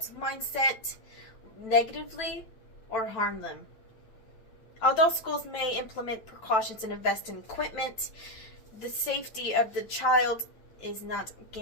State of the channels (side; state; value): right; late; 9.0 ms